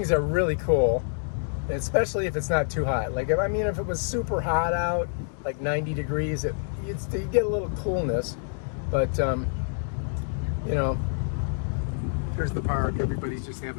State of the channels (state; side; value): silent; right; digital silence